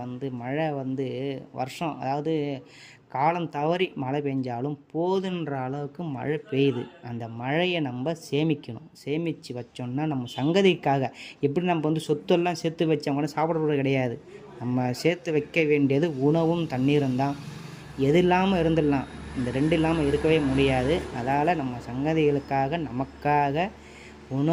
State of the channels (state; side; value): identical; both; correlation 1.00